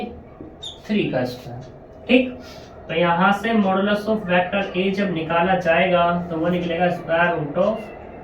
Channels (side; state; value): both; identical; correlation 1.00